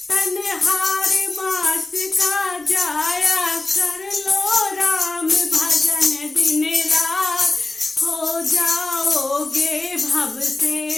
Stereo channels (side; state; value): right; quieter; 3.1 dB